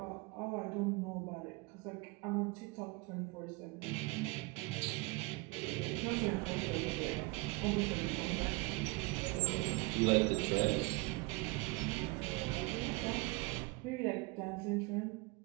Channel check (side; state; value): left; quieter; 26.1 dB